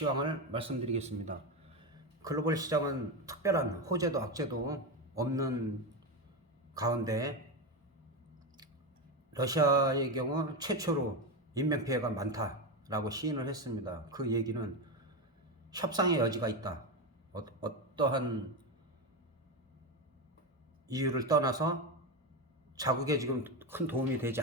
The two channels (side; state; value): both; normal; correlation 0.15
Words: 말씀드리겠습니다. 글로벌 시장은 특별한 호재도 악재도 없는 가운데 러시아의 경우 최초로 인명피해가 많다라고 시인을 했습니다. 그 얘기는 협상의 여지가 있다. 어떠한 이유를 떠나서 자국에 지금 큰 도움이 되지